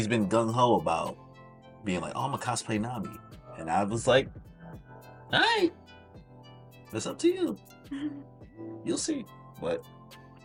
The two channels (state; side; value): identical; both; correlation 1.00